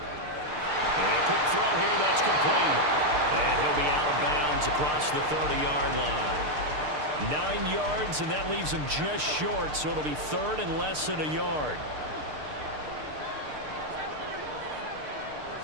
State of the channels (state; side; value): late; left; 6.6 ms